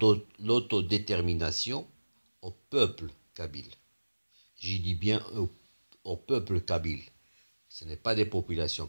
l'autodétermination au peuple kabyle. J'y dis bien au peuple kabyle. Ce n'est pas des populations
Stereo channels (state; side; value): inverted; both; correlation -1.00